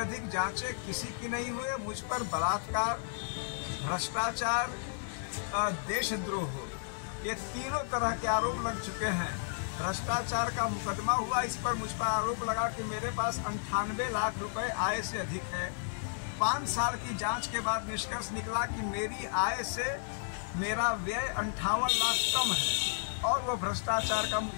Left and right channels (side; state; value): right; silent; digital silence